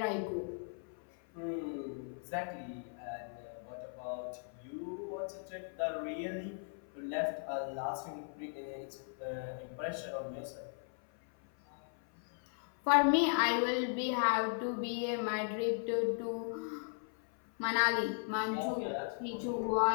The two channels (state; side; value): silent; right; 53 dB below the other